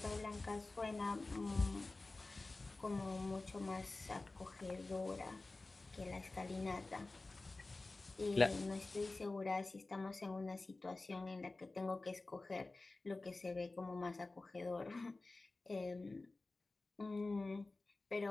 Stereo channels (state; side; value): quieter; right; 3.3 dB